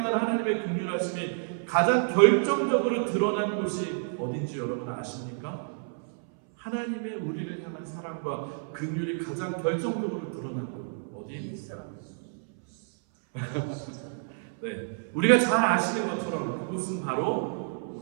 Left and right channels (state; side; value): silent; left; 59 dB below the other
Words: 하나님의 긍휼하심이 가장 결정적으로 드러난 곳이 어딘지 여러분 아십니까? 하나님의 우리를 향한 사랑과 긍휼이 가장 결정적으로 드러난 곳 어디입니까? 네, 우리가 잘 아시는 것처럼 그곳은 바로